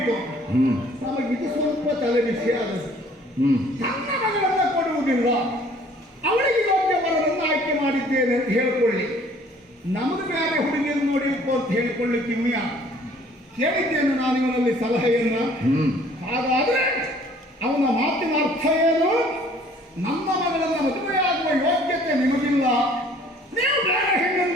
ನಮಗಿದು ಸ್ವಲ್ಪ ತಲೆ ಬಿಸಿ ಆಗುತ್ತೆ. ತನ್ನ ಮಗಳನ್ನ ಕೊಡುವುದಿಲ್ಲ, ಅವಳಿಗೆ ಯೋಗ್ಯ ವರನನ್ನು ಆಯ್ಕೆ ಮಾಡಿದ್ದೇನೆ ಅಂತ ಹೇಳಿಕೊಳ್ಳಿ. ನಮಗೆ ಬೇರೆ ಹುಡುಗಿಯನ್ನು ನೋಡಿಕೊ ಅಂತ ಹೇಳಿಕೊಳ್ಳಿಕ್ಕೆ ಇವ್ಯ ಕೇಳಿದ್ದೇನೆ ನಾನು ಇವನಲ್ಲಿ ಸಲಹೆಯನ್ನ. ಹಾಗಾದ್ರೆ ಅವನ ಮಾತಿನ ಅರ್ಥ ಏನು? ನಮ್ಮ ಮಗಳನ್ನು ಮದುವೆಯಾಗುವ ಯೋಗ್ಯತೆ ನಿಮಗಿಲ್ಲ, ನೀವು ಬೇರೆ ಹೆಣ್ಣನ್ನು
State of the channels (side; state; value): both; normal; correlation 0.56